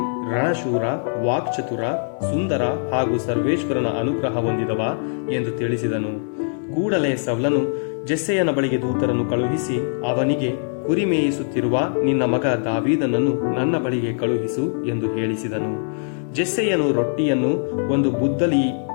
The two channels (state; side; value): silent; right; digital silence